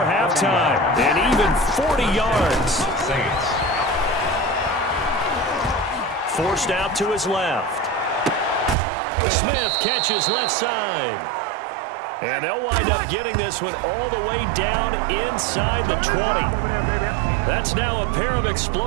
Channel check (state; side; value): drops out; left; at 8.8 s